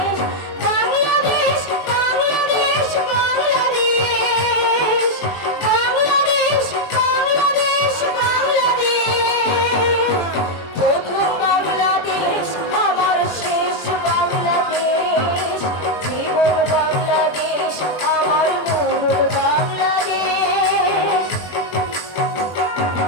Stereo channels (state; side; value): late; right; 21 ms